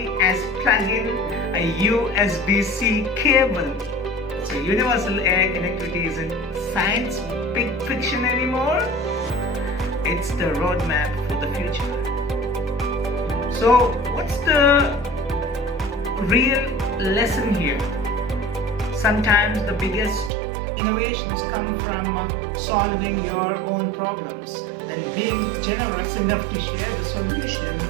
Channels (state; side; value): drops out; left; at 20.3 s